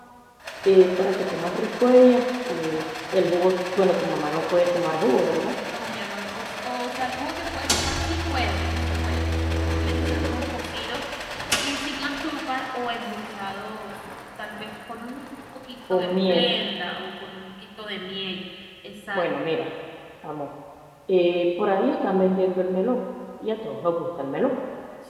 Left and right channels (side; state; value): both; identical; correlation 1.00